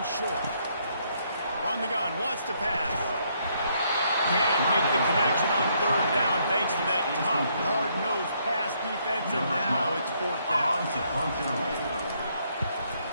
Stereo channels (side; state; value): both; inverted; correlation -0.71